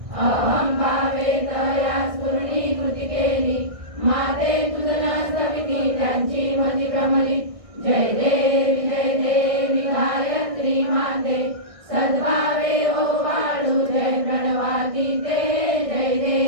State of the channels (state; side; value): late; left; 1.6 ms